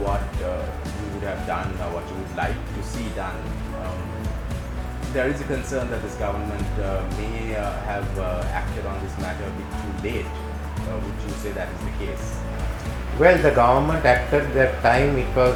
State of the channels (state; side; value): identical; both; correlation 1.00